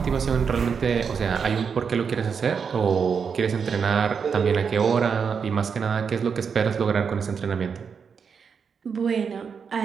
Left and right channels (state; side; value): quieter; left; 6.3 dB